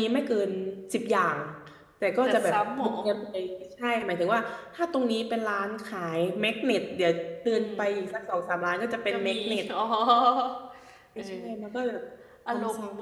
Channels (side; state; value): both; identical; correlation 1.00